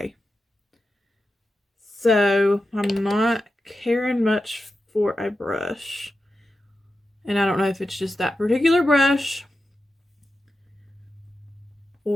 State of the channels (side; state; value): both; normal; correlation 0.91